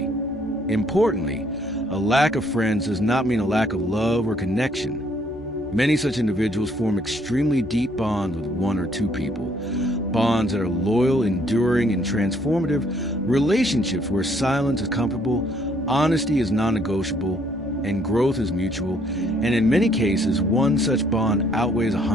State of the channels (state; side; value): noise; left; hum, 23 dB below the sound